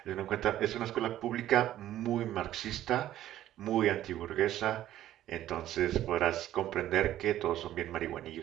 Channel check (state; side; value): quieter; left; 12.9 dB